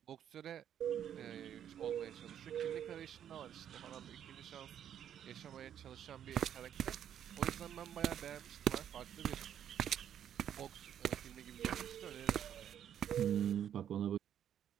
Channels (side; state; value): left; quieter; 9.7 dB